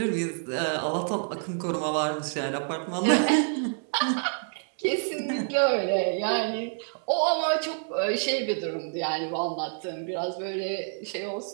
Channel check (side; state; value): left; silent; 59 dB below the other